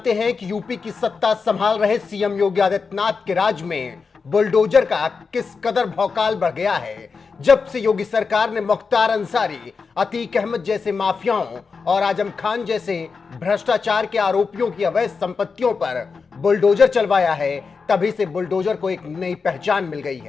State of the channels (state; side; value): quieter; right; 5.0 dB